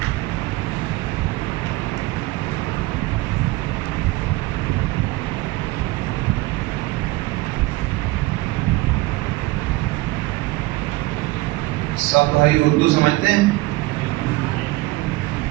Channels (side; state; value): left; quieter; 20.4 dB